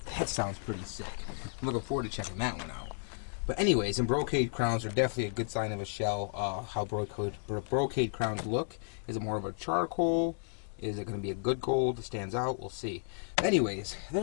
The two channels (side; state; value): right; silent; digital silence